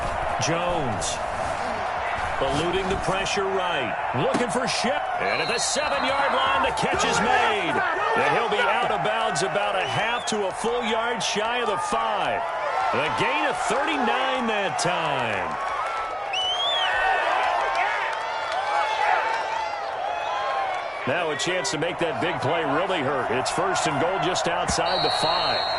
Jones. Eluding the pressure right. Looking for Shep. And at the 7-yard line, the catch is made. And he'll be out of bounds about a half to a full yard shy of the 5. The gain of 39 that time. Now a chance to make that big play really hurt. It's 1st and goal just outside the 5.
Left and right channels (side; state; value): both; identical; correlation 1.00